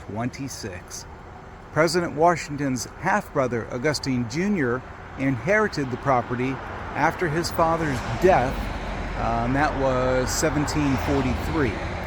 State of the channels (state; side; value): identical; both; correlation 1.00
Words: President Washington's half-brother, Augustine Jr., inherited the property after his father's death, and that was 1743.